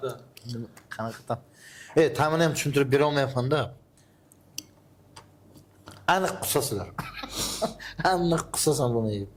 Qanaqadan? Ta'mini ham tushuntirib bera olmayapman-da. Aniq qusasizlar. Aniq qusasan buni yeb.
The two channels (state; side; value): identical; both; correlation 1.00